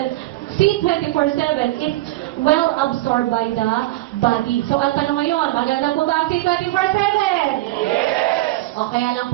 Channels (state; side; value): quieter; left; 17.9 dB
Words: C24/7 is well absorbed by the body. So, ang tanong ngayon, maganda po ba ang C24/7? O kaya lang